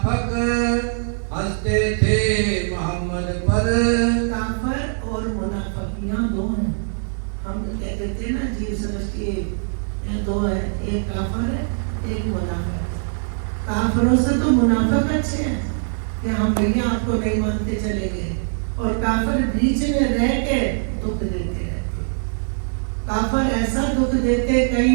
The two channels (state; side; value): silent; left; digital silence